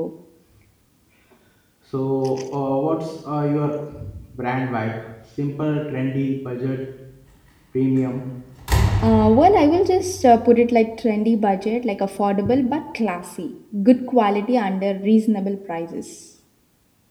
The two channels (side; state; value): both; identical; correlation 1.00